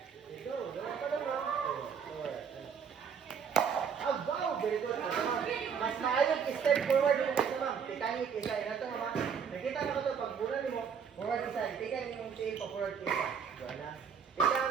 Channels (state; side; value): quieter; left; 6.8 dB